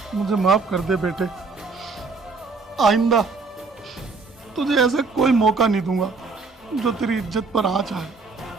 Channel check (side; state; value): left; quieter; 4.2 dB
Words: मुझे माफ कर दे बेटे, आइंदा तुझे ऐसा कोई मौका नहीं दूंगा जो तेरी इज्जत पर आँच आए।